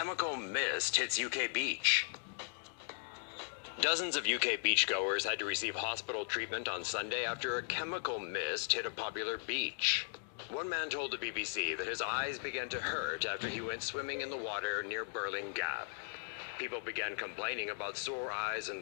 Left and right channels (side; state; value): right; silent; digital silence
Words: mist hits UK beach. Dozens of UK beachgoers had to receive hospital treatment on Sunday after a chemical mist hit a popular beach. One man told the BBC that his eyes began to hurt after he went swimming in the water near Burling Gap. People began complaining about sore eyes